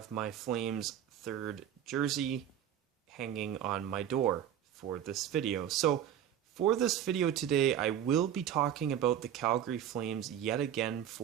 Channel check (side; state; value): left; quieter; 10.1 dB